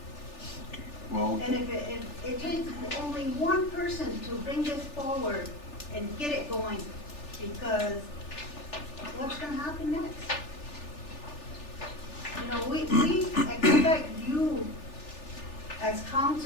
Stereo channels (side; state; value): right; late; 3.4 ms